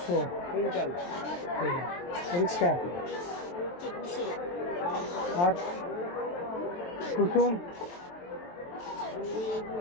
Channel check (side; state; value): right; late; 23 ms